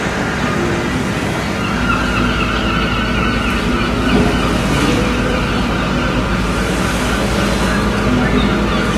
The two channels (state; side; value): identical; both; correlation 1.00